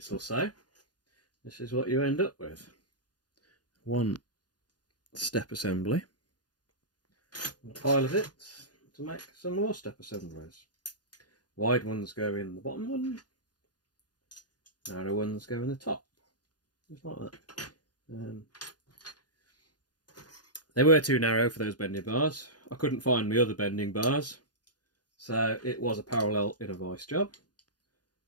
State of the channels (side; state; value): right; late; 0.69 ms